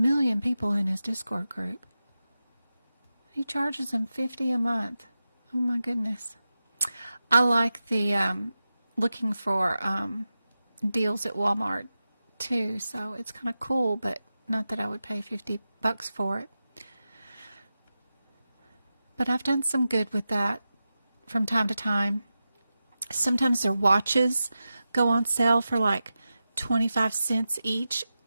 people in his Discord group. He charges them $50 a month. Oh my goodness. I like the looking for deals at Walmart too, so it's kind of cool, but not that I would pay $50 for it. But I've done some good with that from time to time. Sometimes their watches go on sale for like 25 cents each,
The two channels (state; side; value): inverted; both; correlation -0.93